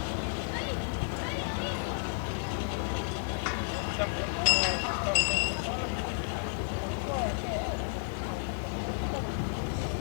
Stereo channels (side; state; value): right; silent; 56 dB below the other